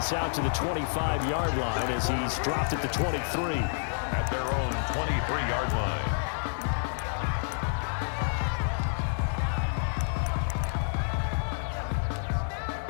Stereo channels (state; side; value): silent; right; 59 dB below the other